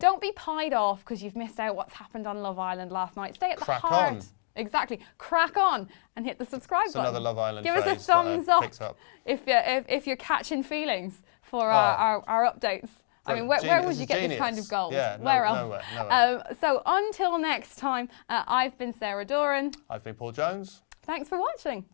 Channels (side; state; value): right; silent; 57 dB below the other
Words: be pied off because you've missed out what's happened on Love Island last night. Stay at the heart. On. Exactly. Crack on and hit the subscribe button. Another Love Island Give us a thumbs up if you're catching feelings for our updates. I mean, where would you get this kind of gold? Yeah, where else? Nowhere. So until next time, I've been Sarah Doran. I've been Paul Jones. Thanks for watching.